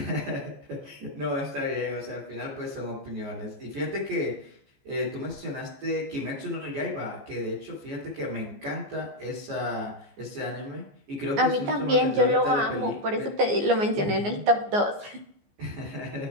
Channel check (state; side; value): late; left; 14 ms